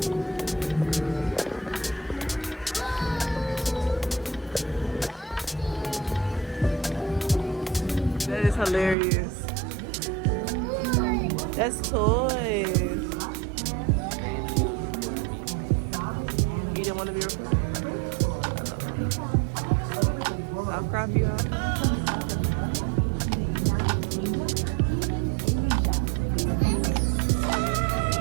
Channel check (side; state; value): left; drops out; at 9.0 s